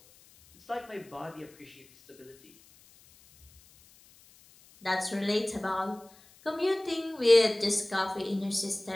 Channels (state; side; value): noise; left; hiss, 27 dB below the sound